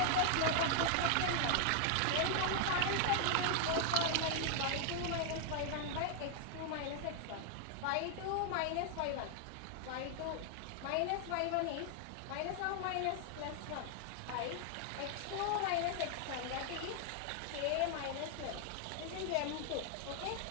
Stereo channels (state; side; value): different; both; correlation 0.00